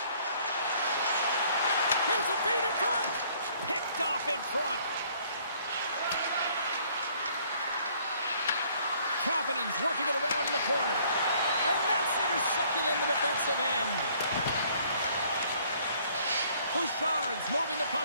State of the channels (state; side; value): inverted; both; correlation -0.61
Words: Here's a feed in front. Picked picked off in front. Kapanen's working it around in the corner. And that's intercepted in the defensive end. Bouchard's moving the